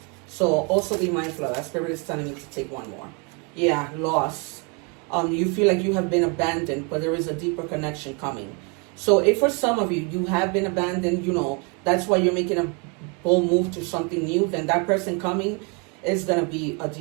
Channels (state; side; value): quieter; left; 33.8 dB